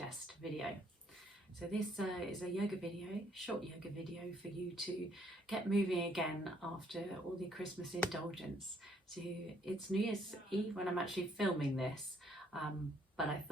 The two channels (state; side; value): normal; both; correlation 0.67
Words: video. So this is a yoga video, short yoga video for you to get moving again after all the Christmas indulgence. So it's New Year's Eve when I'm actually filming this, but I